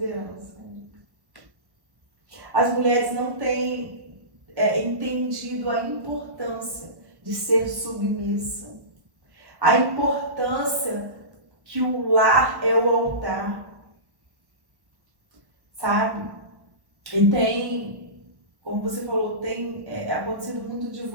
As mulheres não têm entendido a importância de ser submissa, a importância que o lar é o altar, sabe? E tem, como você falou, tem acontecido muito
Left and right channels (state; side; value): late; left; 1.1 ms